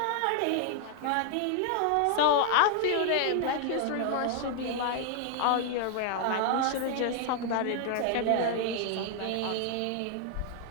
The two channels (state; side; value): different; both; correlation 0.00